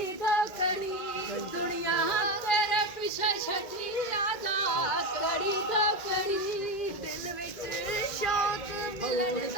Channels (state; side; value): late; right; 2.0 ms